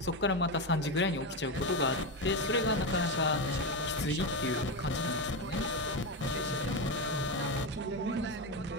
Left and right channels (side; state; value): both; normal; correlation 0.13